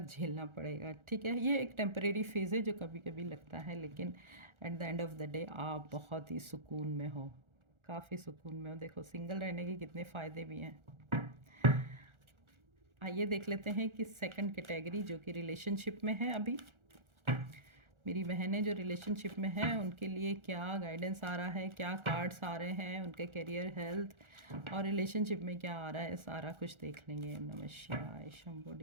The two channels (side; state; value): left; late; 1.4 ms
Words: झेलना पड़ेगा। ठीक है, ये एक टेम्परेरी फेज़ है जो कभी कभी लगता है, लेकिन at the end of the day आप बहुत ही सुकून में हो, काफ़ी सुकून में हो। देखो सिंगल रहने के कितने फ़ायदे भी हैं। आइए देख लेते हैं कि सेकंड कैटेगरी जो कि रिलेशनशिप में है, अभी मेरी बहनें जो रिलेशनशिप में हैं उनके लिए क्या गाइडेंस आ रहा है, क्या कार्ड्स आ रहे हैं, उनके करियर, हेल्थ और रिलेशनशिप में क्या आ रहा है, सारा कुछ देख लेंगे। नमः शिवाय Shambho